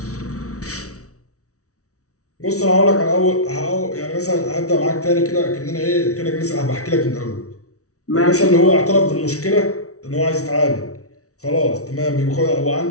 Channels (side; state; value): right; late; 0.65 ms